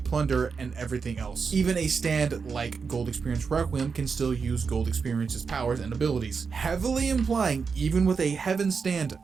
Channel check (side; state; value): left; quieter; 5.4 dB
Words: Plunder and everything else. Even a stand like Gold Experience Requiem can still use Gold Experience's powers and abilities, heavily implying even with a Heaven stand